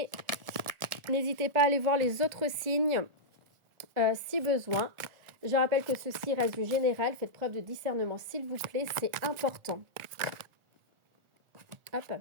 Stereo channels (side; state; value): left; late; 1.4 ms